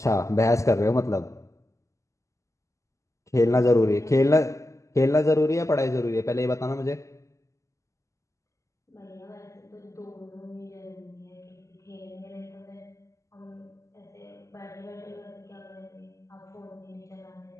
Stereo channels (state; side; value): late; right; 0.15 ms